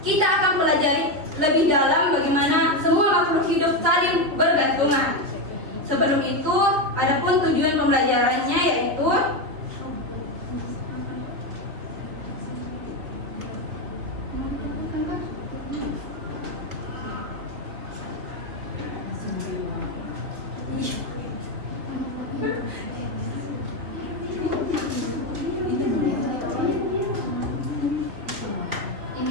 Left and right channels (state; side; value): late; left; 3.3 ms